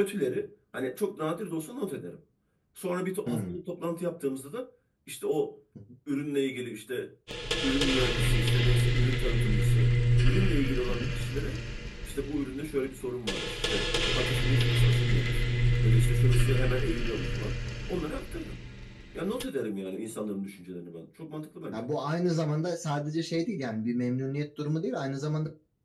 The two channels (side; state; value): both; identical; correlation 1.00